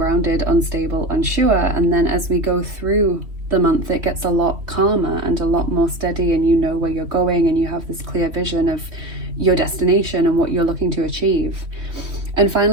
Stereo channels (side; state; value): left; late; 3.1 ms